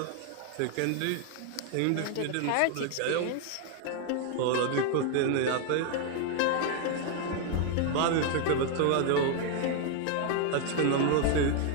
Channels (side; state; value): both; different; correlation 0.00